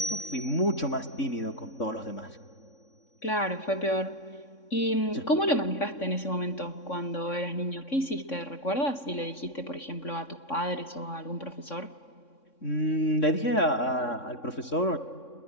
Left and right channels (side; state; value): right; late; 3.6 ms